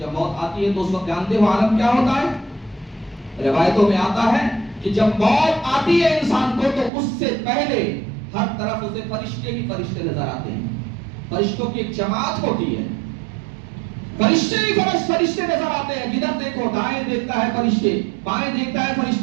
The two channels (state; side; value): drops out; left; at 6.9 s